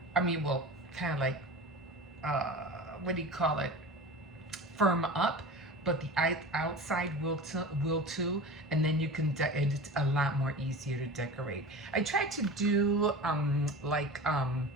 I mean, well, kind of like, what do you call it? Firm up, but the outside will too, and then you can it's a lot more easier to decorate. I tried to do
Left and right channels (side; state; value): both; normal; correlation 0.33